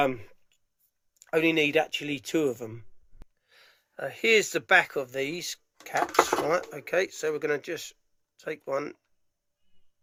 only need actually 2 of them. Here's the back of these caps, right? Okay, so we're going to just take one,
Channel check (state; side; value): identical; both; correlation 1.00